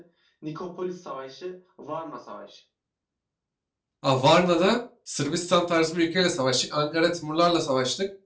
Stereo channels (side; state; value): both; identical; correlation 1.00